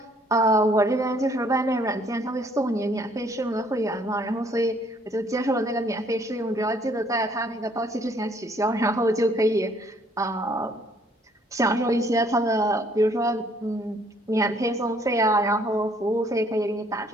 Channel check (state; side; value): normal; both; correlation 0.63